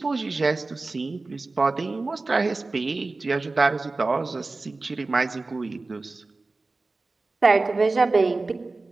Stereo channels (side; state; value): left; quieter; 3.5 dB